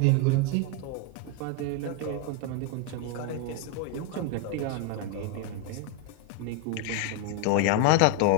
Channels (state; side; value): different; both; correlation 0.01